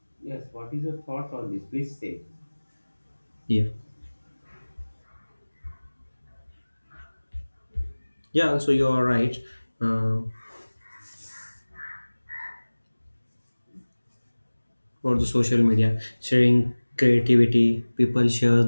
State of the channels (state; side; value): inverted; both; correlation -1.00